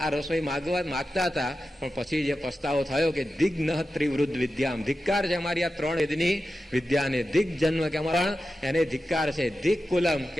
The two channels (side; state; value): both; normal; correlation 0.92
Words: રસોઈ માગતા હતા. પણ પછી જે પસ્તાવો થયો કે દિગ્ન ત્રિવૃદ્ધ વિદ્યામ, ધિક્કાર છે અમારી આ ત્રણ વેદની વિદ્યાને. દિગ જન્મ કે અમારા એને ધિક્કાર છે. દિક કુલમ કે